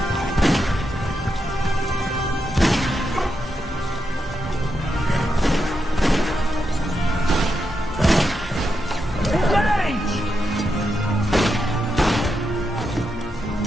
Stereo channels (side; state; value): both; normal; correlation 0.85